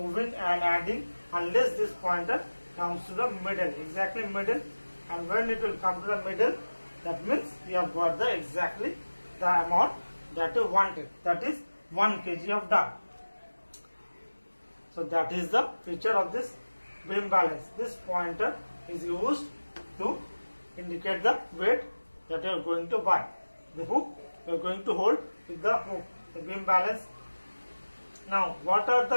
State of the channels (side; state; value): both; inverted; correlation -1.00